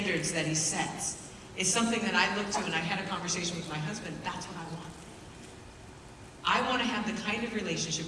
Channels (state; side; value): identical; both; correlation 1.00